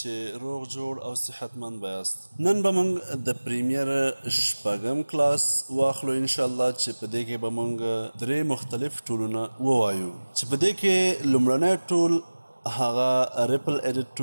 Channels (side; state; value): both; inverted; correlation -1.00